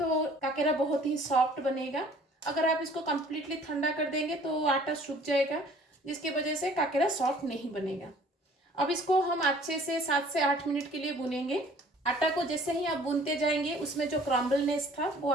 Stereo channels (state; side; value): normal; both; correlation 0.53